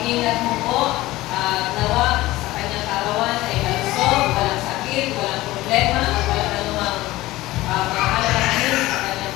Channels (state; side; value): quieter; right; 17.9 dB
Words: mo po, nawa sa kanyang karawan ay malusog, walang sakit, walang problema, at walang anumang mahalakanin sa kanyang